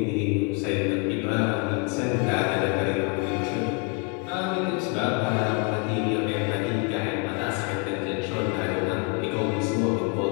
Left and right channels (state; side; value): quieter; right; 32.3 dB